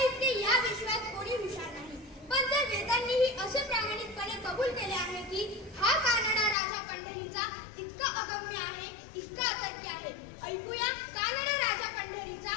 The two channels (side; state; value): right; drops out; at 6.6 s